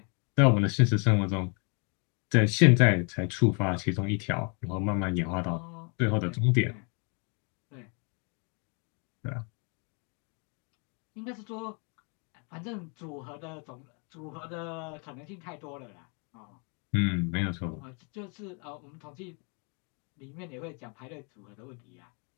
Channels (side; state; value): right; quieter; 36.3 dB